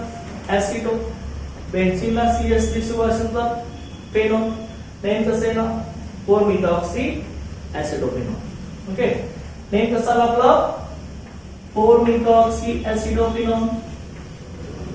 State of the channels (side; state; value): both; identical; correlation 1.00